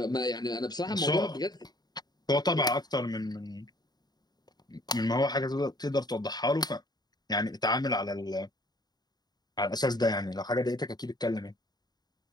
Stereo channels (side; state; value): right; late; 0.20 ms